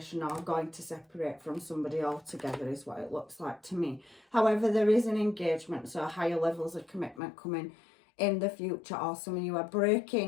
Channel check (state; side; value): drops out; right; at 7.2 s